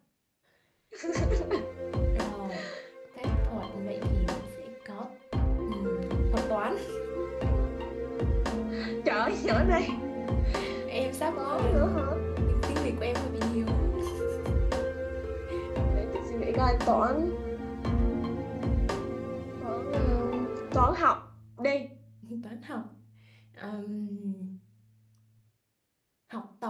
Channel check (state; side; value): identical; both; correlation 1.00